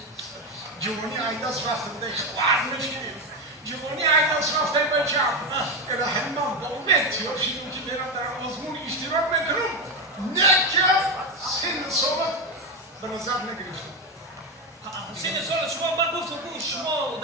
جوانی عیداز رفته بوده خوار نشید جوانی عیداز رفته بچم الهی من با امید شدیم که برم در آزمون اشتراک میکنم نه که سن سالت به نظر نگرفتم سن سال شما من گفتم شما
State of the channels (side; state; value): both; normal; correlation 0.12